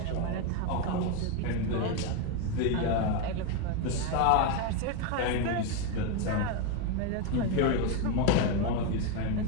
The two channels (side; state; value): both; different; correlation 0.02